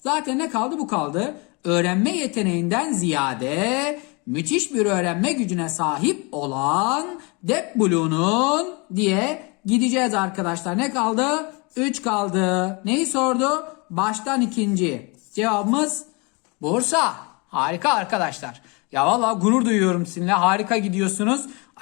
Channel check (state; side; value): quieter; right; 29.7 dB